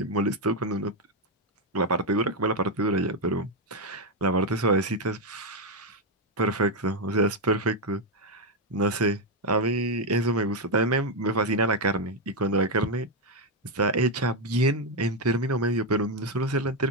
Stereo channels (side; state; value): both; normal; correlation 0.04